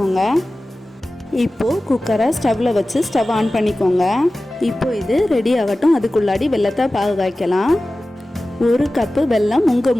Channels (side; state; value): both; normal; correlation 0.96